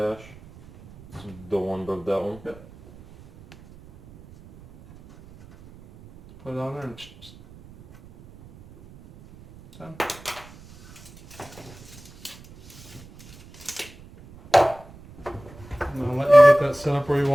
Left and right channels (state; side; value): noise; right; rumble, 21 dB below the sound